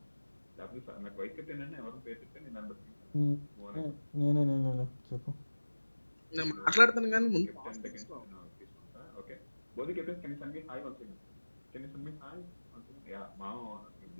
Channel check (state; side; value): inverted; both; correlation -1.00